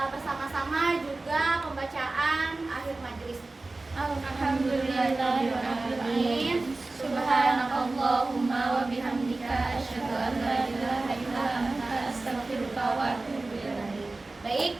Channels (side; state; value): left; quieter; 3.2 dB